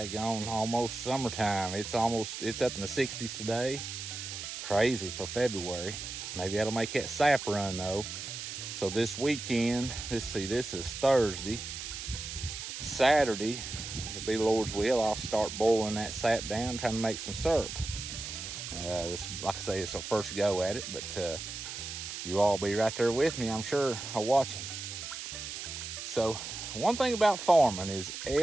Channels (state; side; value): noise; right; hiss, 7 dB below the sound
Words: almost summertime. It's up in the 60s today. Crazy for February. Maybe that'll make that sap run though. So this weekend, this is Thursday. Saturday, if it be the Lord's will, I'll start boiling that sap down, trying to make some syrup. This, like I say, it's our first go at it, but you all be right there with me, I'm sure, watching. So one thing about farming is